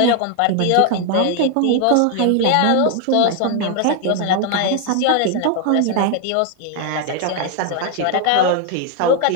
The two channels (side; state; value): both; different; correlation 0.00